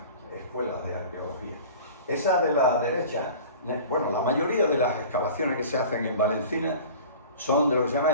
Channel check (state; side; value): inverted; both; correlation -0.41